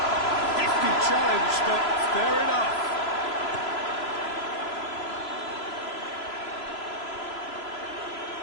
Challenge, but fair enough.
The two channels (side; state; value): right; late; 3.0 ms